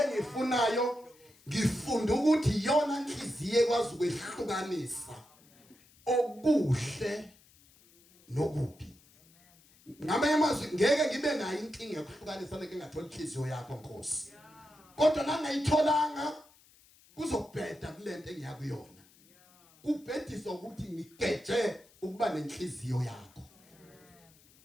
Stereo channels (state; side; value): noise; left; hiss, 28 dB below the sound